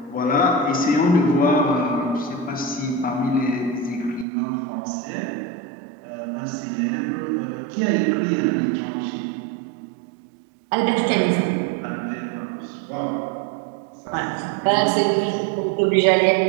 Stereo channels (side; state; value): left; drops out; at 4.2 s